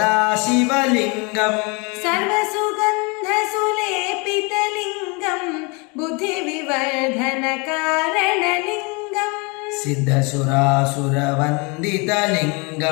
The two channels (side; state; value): right; quieter; 30.1 dB